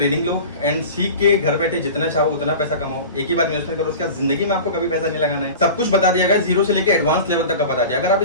लो एंड सीख के घर बैठे जितना चाहो उतना पैसा कमाओ। एक ही बार इन्वेस्टमेंट करो, उसके बाद जिंदगी में आपको कभी पैसा नहीं लगाना है। सब कुछ बता दिया गया, जीरो से लेकर एडवांस लेवल तक का बता दिया। अगर आप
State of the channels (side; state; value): both; inverted; correlation -0.35